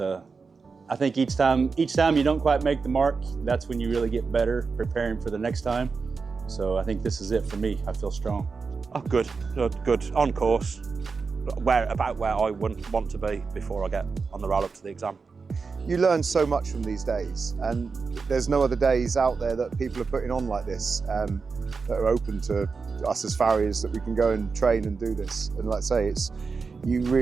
I think each time you don't quite make the mark, that's when you really get better preparing for the next time. So I think this is it for me. I feel strong. Oh, good. On course. About where I wouldn't want to be before I get on the roll up to the exam. You learn so much from these days, and there's no other days out there that people are putting on like this that are open to us as farriers, that we can go and train and do this. And like I say, you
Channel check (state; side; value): quieter; left; 4.8 dB